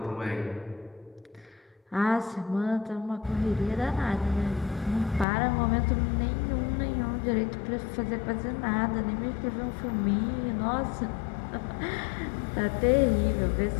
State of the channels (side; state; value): right; drops out; at 5.2 s